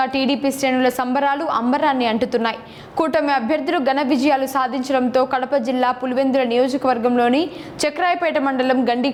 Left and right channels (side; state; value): both; identical; correlation 1.00